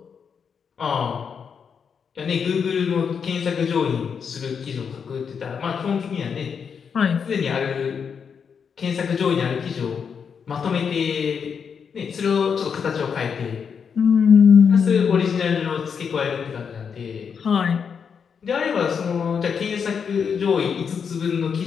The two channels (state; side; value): quieter; right; 6.6 dB